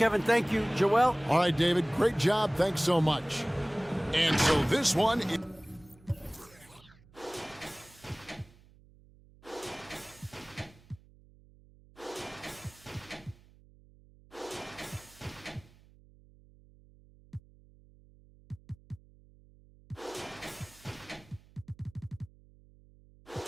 thank you. Joel? All right, David, great job. Thanks so much. And so this one...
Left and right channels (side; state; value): right; noise; hum, 26 dB below the sound